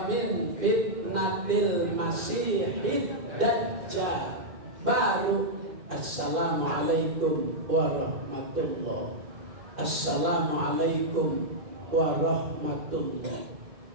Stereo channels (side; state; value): left; late; 2.6 ms